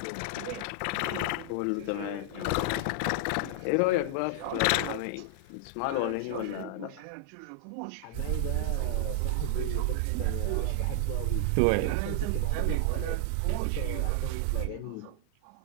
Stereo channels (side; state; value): both; different; correlation -0.01